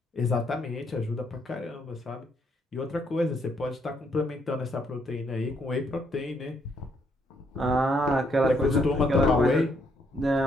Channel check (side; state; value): both; normal; correlation 0.72